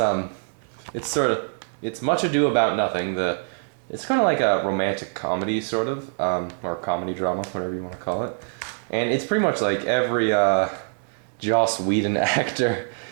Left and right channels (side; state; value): left; silent; digital silence